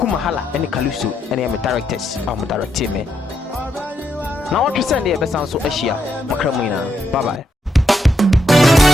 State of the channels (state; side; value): normal; both; correlation 0.79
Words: Mahala ene Kaluso ene ya me directors am director me na what you send e besan so ahia makramu ina bye bye